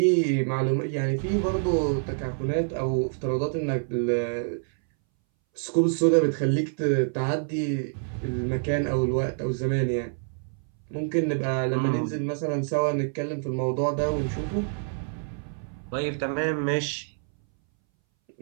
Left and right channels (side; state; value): left; silent; 60 dB below the other